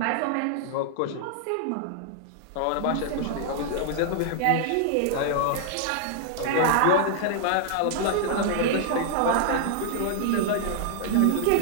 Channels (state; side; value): different; both; correlation -0.01